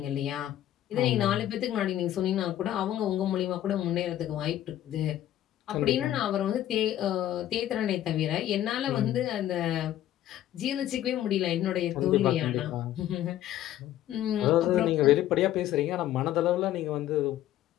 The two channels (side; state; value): right; quieter; 12.7 dB